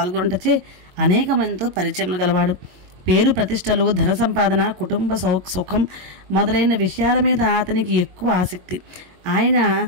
అనేక మందితో పరిచయములు గలవాడు. పేరు ప్రతిష్టలు, ధన సంపాదన, కుటుంబ సుఖం మొదలైన విషయాల మీద అతనికి ఎక్కువ ఆసక్తి. ఆయన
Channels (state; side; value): late; left; 22 ms